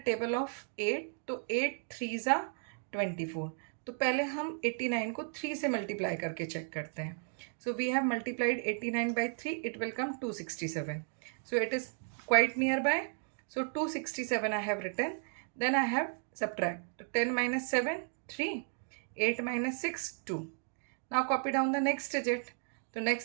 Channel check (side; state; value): left; silent; 55 dB below the other